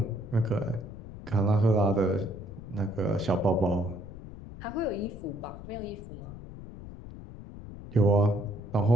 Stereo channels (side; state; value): left; noise; rumble, 13 dB below the sound